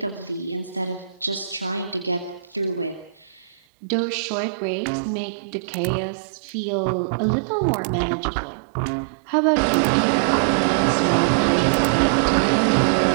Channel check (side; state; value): left; drops out; at 3.6 s